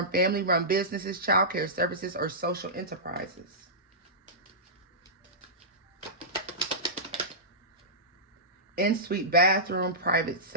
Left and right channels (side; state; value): both; normal; correlation -0.17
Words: family-run businesses, childcare services, or social enterprises. In-suite bathroom, private